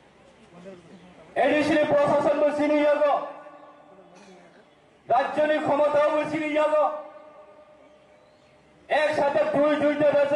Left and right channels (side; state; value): both; identical; correlation 1.00